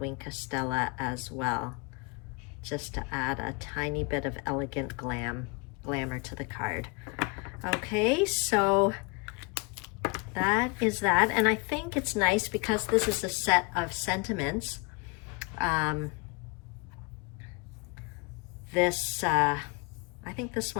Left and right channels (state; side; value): quieter; right; 28.8 dB